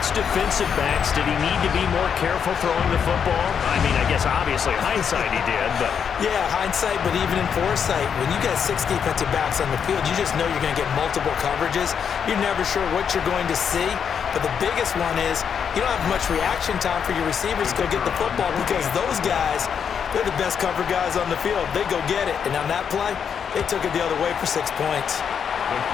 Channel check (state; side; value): quieter; right; 7.4 dB